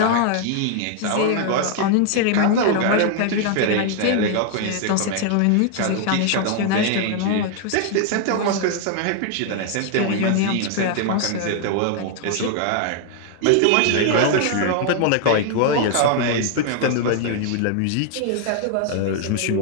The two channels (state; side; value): different; both; correlation 0.00